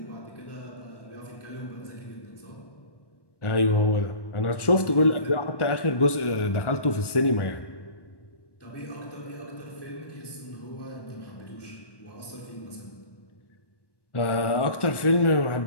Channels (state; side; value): late; right; 1.1 ms